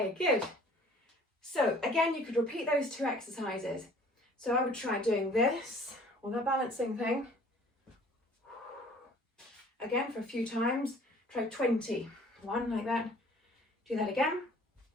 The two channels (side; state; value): both; normal; correlation 0.52